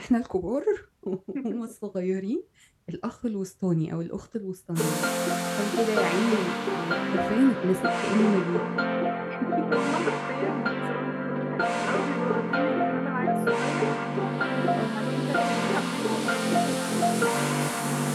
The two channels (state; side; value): identical; both; correlation 1.00